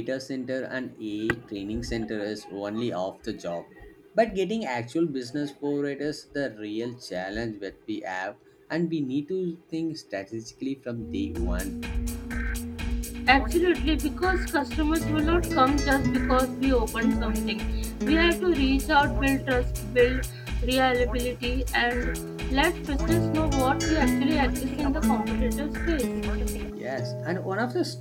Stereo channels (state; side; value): identical; both; correlation 1.00